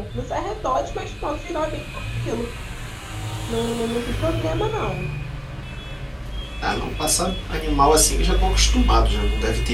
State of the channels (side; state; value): both; identical; correlation 1.00